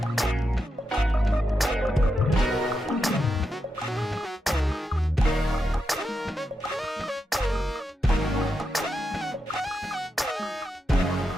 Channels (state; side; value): normal; both; correlation 0.86